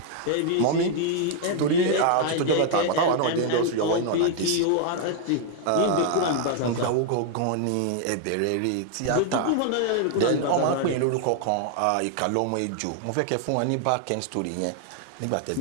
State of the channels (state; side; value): different; both; correlation 0.00